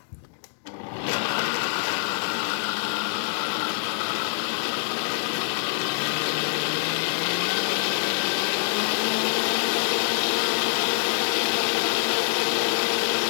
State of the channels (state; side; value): silent; right; 62 dB below the other